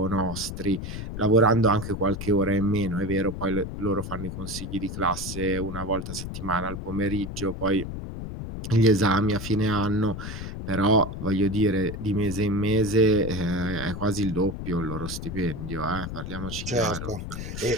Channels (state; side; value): noise; left; rumble, 7 dB below the sound